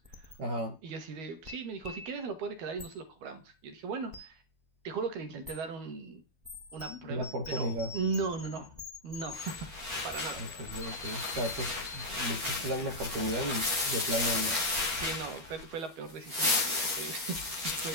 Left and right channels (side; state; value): left; late; 12 ms